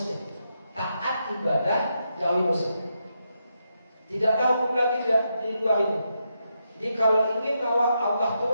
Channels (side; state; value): both; inverted; correlation -0.83